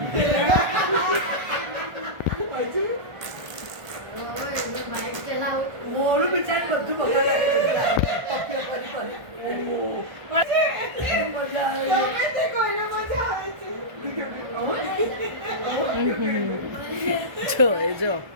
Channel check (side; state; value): left; late; 1.2 ms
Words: મોડું બિચાર બધું બગાડે. જો એ જો